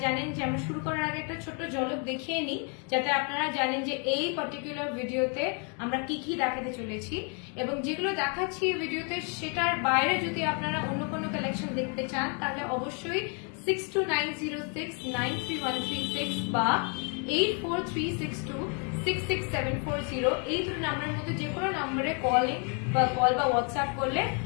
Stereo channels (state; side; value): quieter; right; 37.7 dB